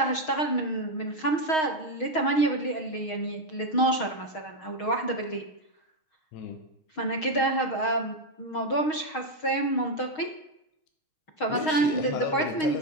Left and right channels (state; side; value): late; right; 6.4 ms